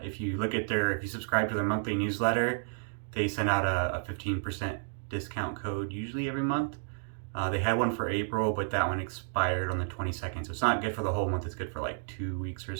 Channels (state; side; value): silent; left; digital silence